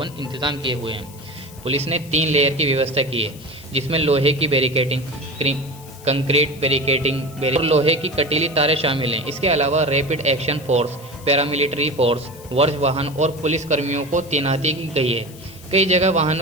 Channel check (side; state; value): left; noise; hiss, 21 dB below the sound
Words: इंतजाम किए हुए हैं। पुलिस ने 3 लेयर की व्यवस्था की है, जिसमें लोहे की बैरिकेडिंग, कंक्रीट बैरिकेडिंग और लोहे की कटीली तारें शामिल हैं। इसके अलावा rapid action force, paramilitary force, वर्ष वाहन और पुलिस कर्मियों को तैनाती की गई है। कई जगह